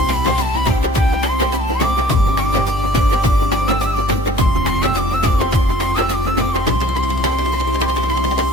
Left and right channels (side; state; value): both; normal; correlation 0.50